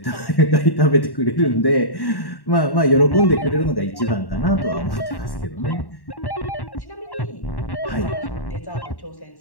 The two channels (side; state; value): right; late; 1.1 ms